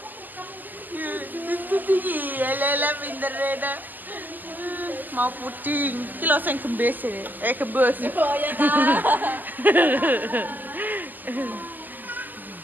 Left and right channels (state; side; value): late; left; 0.086 ms